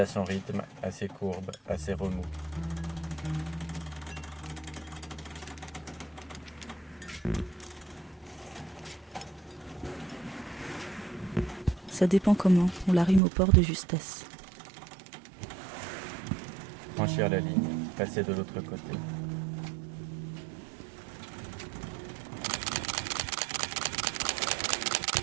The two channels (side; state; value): left; drops out; at 13.2 s